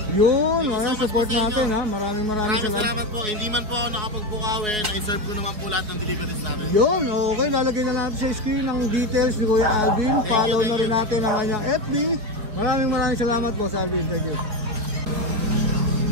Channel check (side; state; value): left; late; 4.4 ms